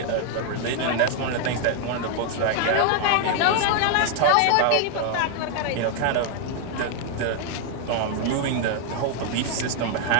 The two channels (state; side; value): different; both; correlation 0.00